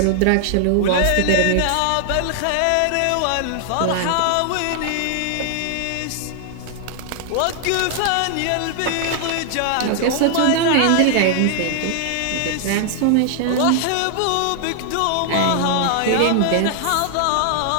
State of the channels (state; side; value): different; both; correlation 0.00